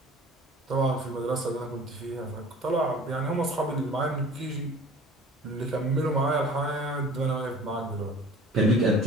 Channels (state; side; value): normal; both; correlation 0.45